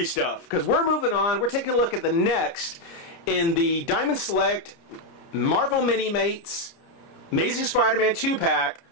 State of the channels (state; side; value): late; right; 30 ms